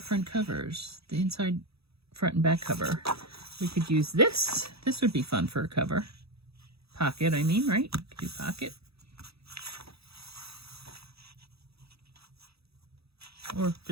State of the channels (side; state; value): left; late; 0.77 ms